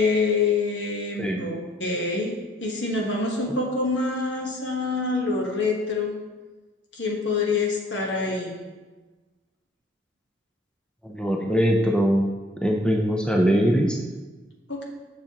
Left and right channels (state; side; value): normal; both; correlation 0.59